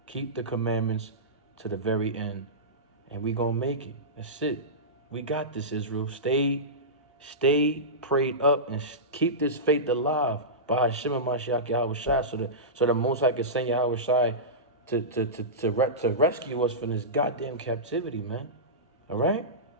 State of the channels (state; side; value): normal; both; correlation -0.17